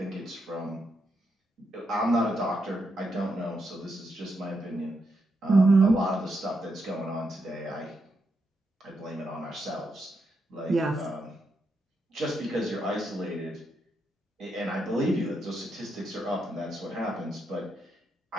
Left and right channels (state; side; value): normal; both; correlation 0.82